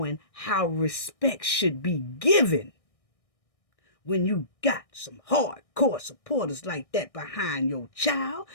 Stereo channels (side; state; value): right; late; 1.6 ms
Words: how respect should be given when you got some hardcore supporters like that behind your child,